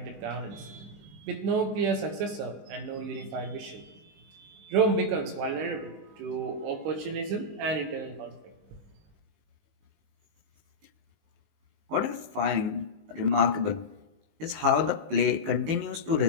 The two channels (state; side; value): late; left; 19 ms